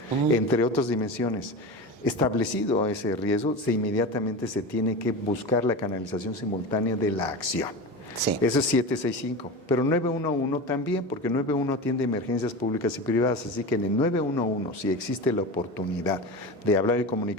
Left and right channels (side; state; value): both; normal; correlation 0.27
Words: entre otras dimensiones. Establecido ese riesgo, inmediatamente se tiene que buscar la canalización simultánea de la acción. Sí. Eso es 765, pero 911 también, porque 911 atiende emergencias públicas y privadas, así que en el 911, si existe la oportunidad de hablar y